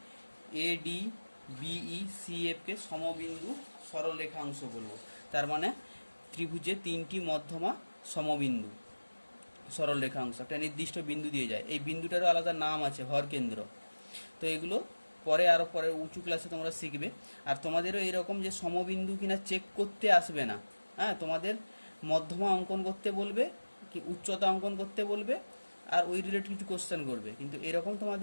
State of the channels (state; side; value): inverted; both; correlation -1.00